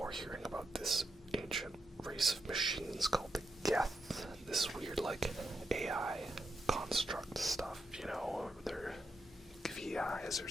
hearing about this ancient race of machines called the Geth, this weird, like, AI construct stuff, you know, or they're VIs or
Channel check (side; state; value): both; normal; correlation 0.84